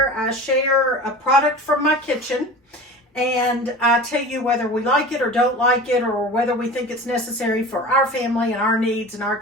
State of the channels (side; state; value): both; normal; correlation 0.35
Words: I share a product from my kitchen, and I tell you whether we like it or don't like it, or whether we think it's necessary for our family and our needs in our